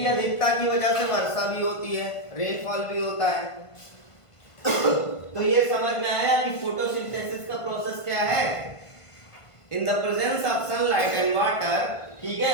अधिकता की वजह से वर्षा भी होती है, रेनफॉल भी होता है। तो ये समझ में आया कि फोटोसिंथेसिस का प्रोसेस क्या है? In the presence of sunlight and water, ठीक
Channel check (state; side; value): late; right; 1.5 ms